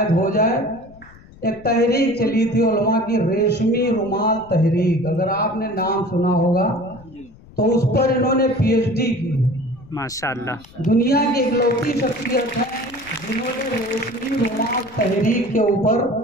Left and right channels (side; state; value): left; noise; rumble, 23 dB below the sound